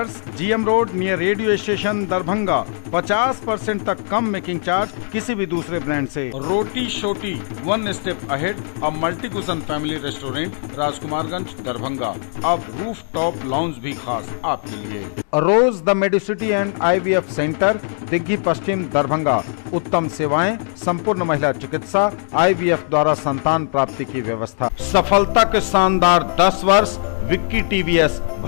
GM road near radio station Darbhanga. 50% तक कम मेकिंग चार्ज किसी भी दूसरे ब्रांड से। Roti Shoti, one step ahead, a multi cuisine family restaurant, Rajkumarganj Darbhanga. अब रूफ टॉप लॉन्ज भी खास आपके लिए। Rose the medicity and IVF centre, Digghi Paschim Darbhanga. उत्तम सेवाएं, संपूर्ण महिला चिकित्सा, IVF द्वारा संतान प्राप्ति की व्यवस्था। सफलता के शानदार 10 वर्ष। Vicky TVS,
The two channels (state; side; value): silent; right; digital silence